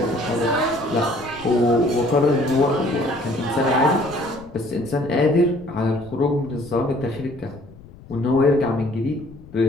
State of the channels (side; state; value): left; noise; rumble, 20 dB below the sound